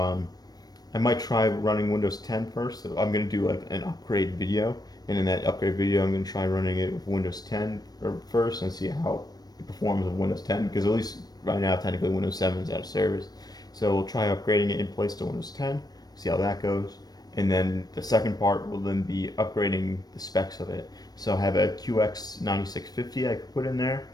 I might try running Windows 10 first. So I'm gonna do like an upgrade video, and in that upgrade video, I'm gonna try running it with Windows 10 first and see how it performs with Windows 10. Because at least right now, technically Windows 7 is out of service. So we'll try upgrading it in place to Windows 10, see how that goes, and then the second part will then be upgrading the specs of it. So I have a QX 9650 I could put in there.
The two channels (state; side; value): late; right; 0.19 ms